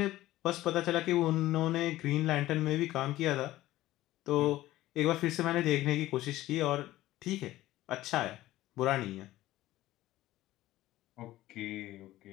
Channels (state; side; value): quieter; right; 15.8 dB